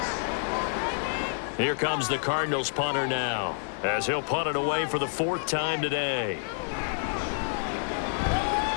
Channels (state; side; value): silent; right; digital silence